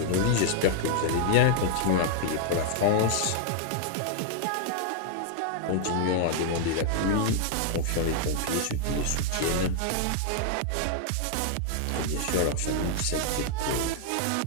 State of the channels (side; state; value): both; different; correlation 0.00